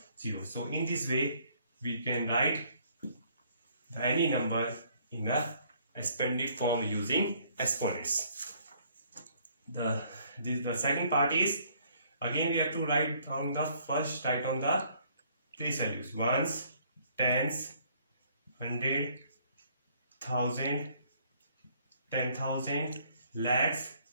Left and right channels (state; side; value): inverted; both; correlation -0.63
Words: 0. So in this way we can write any number in a expanded form using exponents. The second part is, again we have to write down the place values, ones, tens, 100, 1000, 10,000, lakhs